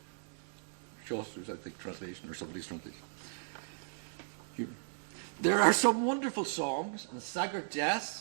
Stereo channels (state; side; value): silent; left; digital silence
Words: Chaucer's, I think, translation, or somebody's translation. There are some wonderful songs, and Sagart